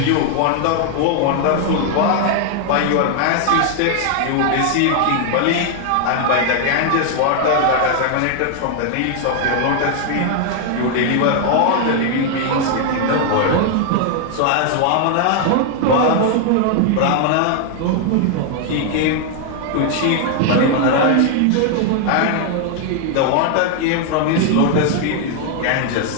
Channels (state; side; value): different; both; correlation 0.00